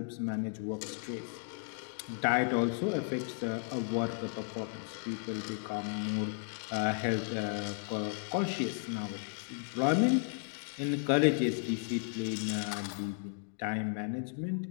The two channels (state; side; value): silent; right; 55 dB below the other